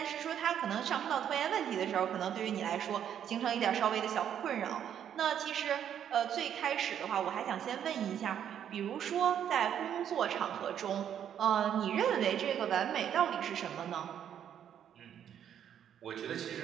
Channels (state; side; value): quieter; left; 9.4 dB